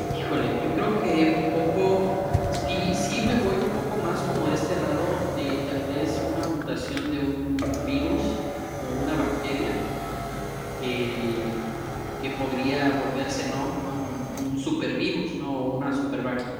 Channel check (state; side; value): identical; both; correlation 1.00